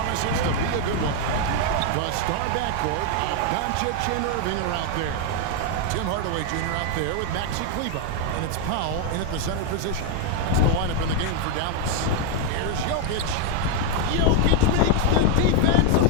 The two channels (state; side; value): different; both; correlation 0.01